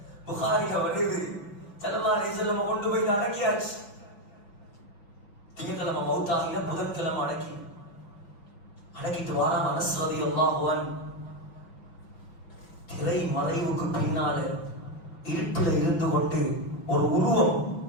புகாரில வருது, ஸல்லல்லாஹு அலைஹி வஸல்லம் கொண்டு போய் அடக்கியாச்சு. திங்கட்கிழமை மௌத்தாகின, புதன்கிழமை அடக்கிட்டு வாரான் அனஸ் ரலியல்லாஹு அன்ஹு. திரை மறைவுக்கு பின்னால இருட்டுல இருந்து கொண்டு ஒரு உருவம்,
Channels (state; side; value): late; right; 5.9 ms